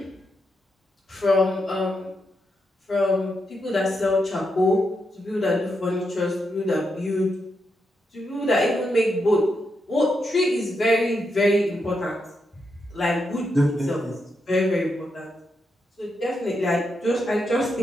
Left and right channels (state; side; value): normal; both; correlation 0.83